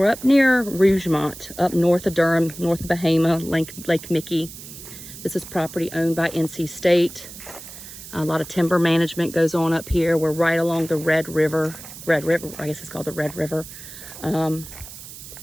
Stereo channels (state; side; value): noise; right; hiss, 14 dB below the sound